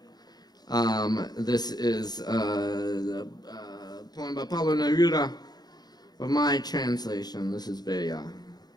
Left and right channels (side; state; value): right; late; 0.19 ms